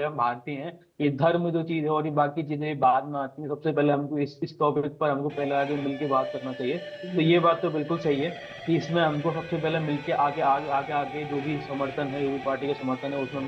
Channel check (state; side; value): identical; both; correlation 1.00